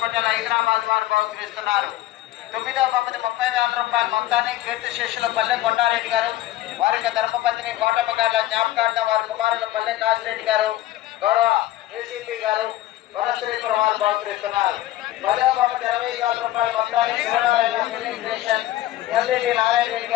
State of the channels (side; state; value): right; quieter; 14.7 dB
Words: హైదరాబాద్ వారు బహుకరిస్తున్నారు. 9వ బహుమతి 30,000 రూపాయల మొత్తాన్ని కీర్తిశేషుల పల్లె కొండారెడ్డి గారు వారికి ధర్మపత్ని కోటమ్మ గారి జ్ఞాపకార్థం వారి కుమారులు పల్లె కాశిరెడ్డి గారు గౌరవ ఏసీపీ గారు వనశ్రీపురం వారు బహుకరిస్తున్నారు. 10వ బహుమతి 20,000 రూపాయల మొత్తాన్ని ఎల్ఈడి నారాయణ రెడ్డి